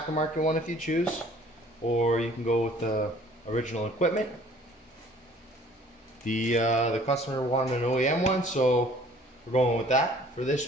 one if you choose, or you can go with the original equipment. The customer wanted an OEM one, so we're going with that. For this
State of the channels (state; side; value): normal; both; correlation 0.54